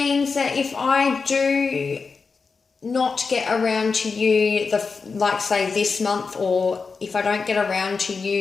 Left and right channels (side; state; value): right; quieter; 4.8 dB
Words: that if I do not get around to you, like say this month, or if I don't get around to